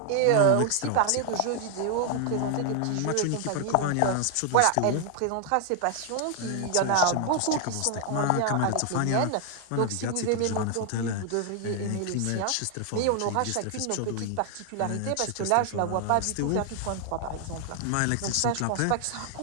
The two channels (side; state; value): both; different; correlation 0.00